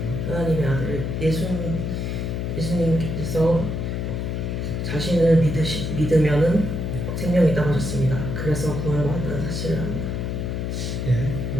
하나님의 아들 예수님께서 자신을 믿으면은 생명이 있다고 하셨습니다. 그래서 구원을 받았다는 사실을 압니다. 예,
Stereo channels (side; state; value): left; noise; hum, 2 dB below the sound